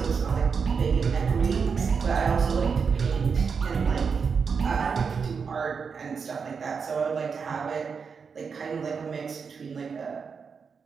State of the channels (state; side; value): quieter; left; 5.7 dB